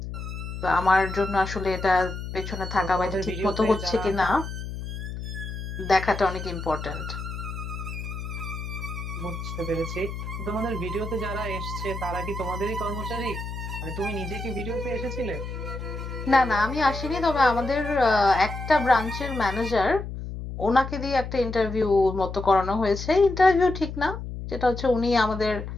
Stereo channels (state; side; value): noise; left; hum, 7 dB below the sound